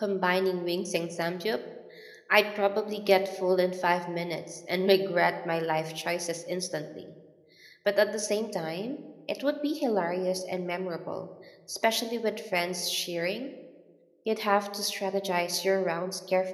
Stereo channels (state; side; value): identical; both; correlation 1.00